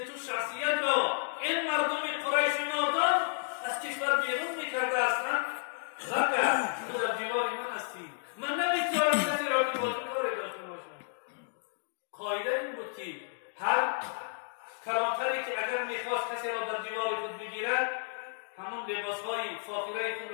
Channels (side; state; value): right; silent; digital silence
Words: تو شخصیت را این مردم قریش نادان از کشور بیرون میکرده هستند؟ بله، تو در جوار من هستی، من نمیگذارم کسی را که با تو کاری داشته باشم. قاعده این بود که هر کلانتری که اگر میخواست کسی را در جوار خود بگیرد، همون لباسهای فاخره خود